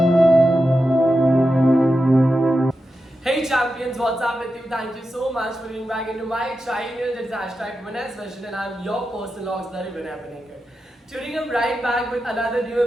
champions, what's up with you? Thank you so much for tuning back into my channel. It's hashtag Vinay's Vision and I'm your personal auxiliary Vinay Panikar. Tuning up right back with another new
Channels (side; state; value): both; normal; correlation 0.90